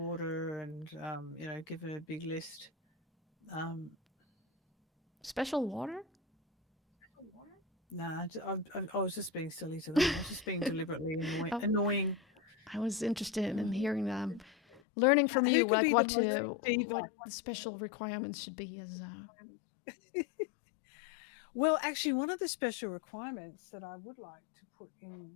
and, give it a big list. Special water? Nah, I was just being silly to them. I was just being deliberately Oh, annoying. I was interested in hearing them, learning from Who you, could like be the most diva? what the special requirements should be as. Well, actually, one of the special requirements that I would like to put in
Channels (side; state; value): right; drops out; at 14.8 s